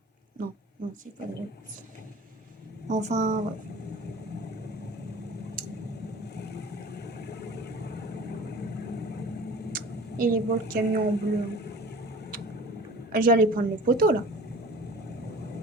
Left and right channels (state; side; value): normal; both; correlation 0.42